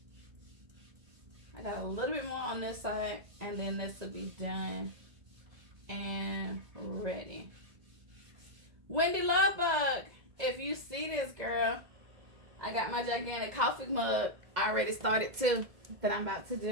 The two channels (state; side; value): late; left; 1.9 ms